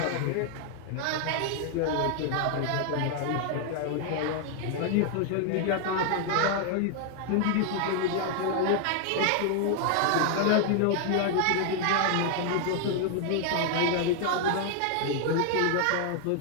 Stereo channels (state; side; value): different; both; correlation 0.00